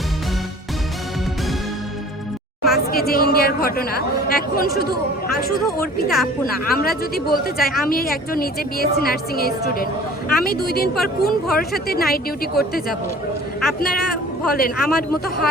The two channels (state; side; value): normal; both; correlation 0.47